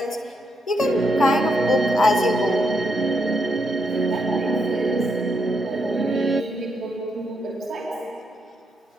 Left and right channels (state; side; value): normal; both; correlation 0.79